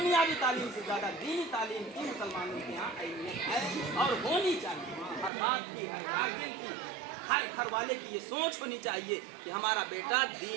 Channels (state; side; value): drops out; left; at 5.3 s